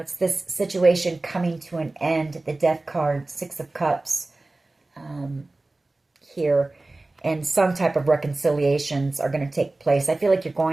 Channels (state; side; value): quieter; left; 3.0 dB